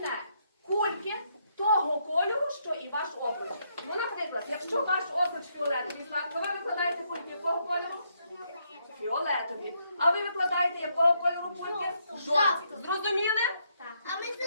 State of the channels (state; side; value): inverted; both; correlation -0.75